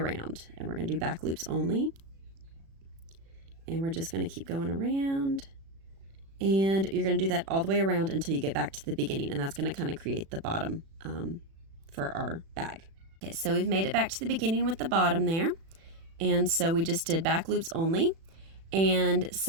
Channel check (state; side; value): late; left; 36 ms